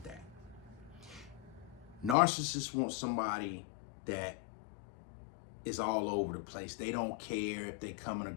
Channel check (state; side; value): drops out; right; at 2.1 s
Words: that. Narcissists want somebody that is all over the place. They don't care if they coming or